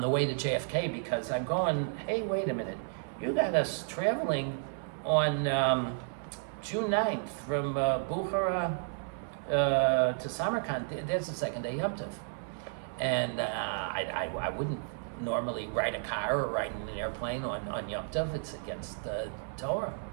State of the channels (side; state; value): left; silent; 56 dB below the other